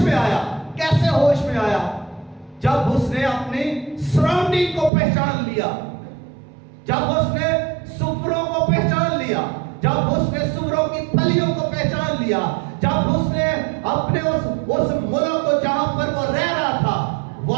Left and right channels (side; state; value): left; drops out; at 4.9 s